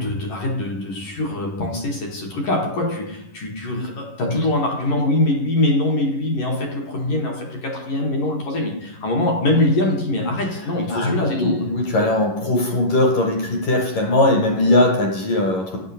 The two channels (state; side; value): late; right; 11 ms